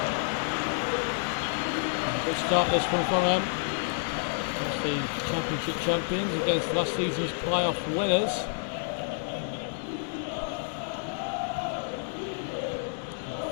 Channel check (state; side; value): silent; right; digital silence